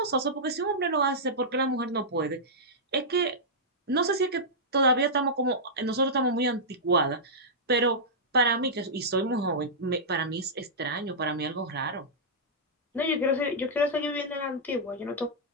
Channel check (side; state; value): both; normal; correlation -0.11